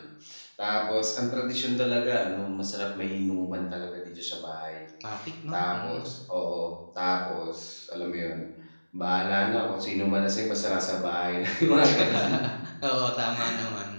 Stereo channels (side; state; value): both; inverted; correlation -1.00